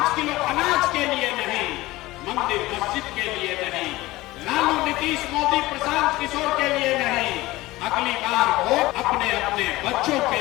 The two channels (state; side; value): quieter; right; 18.8 dB